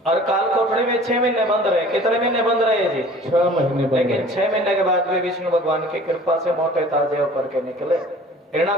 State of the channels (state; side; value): normal; both; correlation 0.47